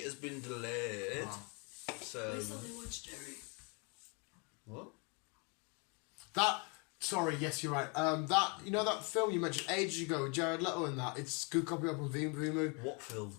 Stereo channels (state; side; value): quieter; right; 33.3 dB